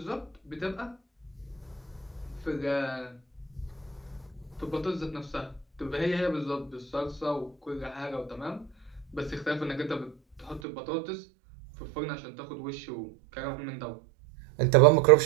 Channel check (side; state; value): left; drops out; at 10.6 s